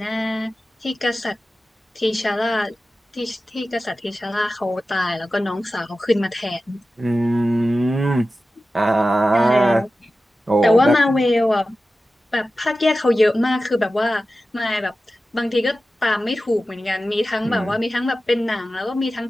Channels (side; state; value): both; normal; correlation 0.94